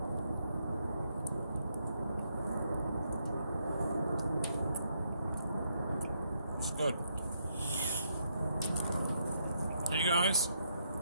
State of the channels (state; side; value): inverted; both; correlation -0.76